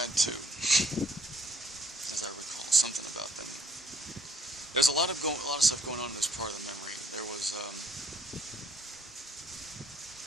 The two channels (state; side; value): normal; both; correlation 0.64